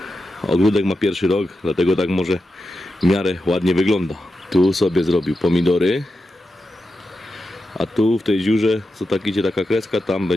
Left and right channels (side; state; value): both; normal; correlation 0.89